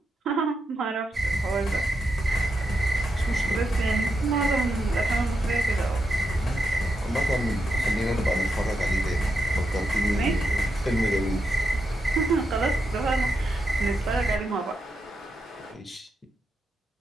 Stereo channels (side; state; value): both; normal; correlation 0.84